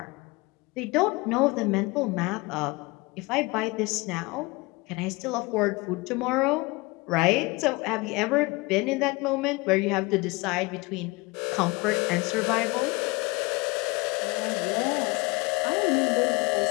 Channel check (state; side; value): quieter; right; 24.9 dB